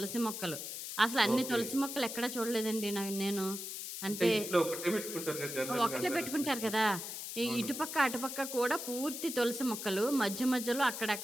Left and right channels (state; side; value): noise; left; hiss, 7 dB below the sound